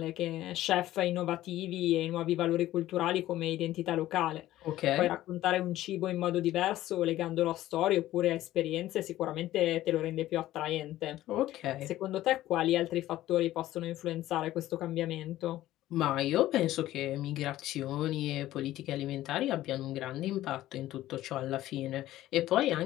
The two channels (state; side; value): quieter; right; 14.7 dB